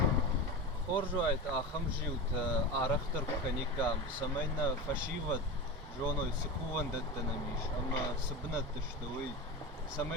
Хоржуайт ахамжиут арахтар каникам самайна фашиват жоной сыкуван даттанамиш, ама сыбнат тыштовый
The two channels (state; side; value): normal; both; correlation 0.23